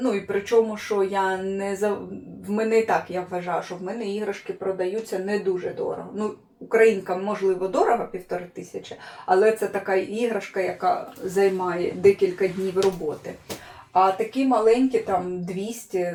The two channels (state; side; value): identical; both; correlation 1.00